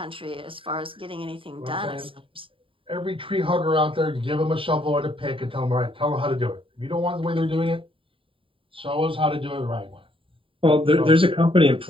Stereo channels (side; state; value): left; late; 0.25 ms